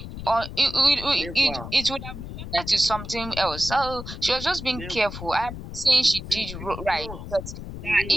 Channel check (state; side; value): noise; left; rumble, 10 dB below the sound